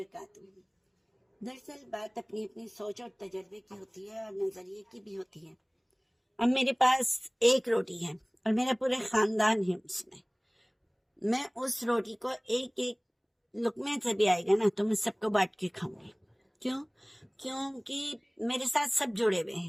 دراصل بات اپنی اپنی سوچ اور تجربے کی ہوتی ہے اور نظریے کی بھی ہوتی ہے۔ اب میرے پاس ایک روٹی ہے اور میرا پورا خاندان ہے اس میں اس روٹی کو ایک ایک لقمے سے بھی آئے گا نا تو میں سب کو بانٹ کے کھاؤں گی۔ کیونکہ میرے ساتھ سب جڑے ہوئے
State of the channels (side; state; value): both; identical; correlation 1.00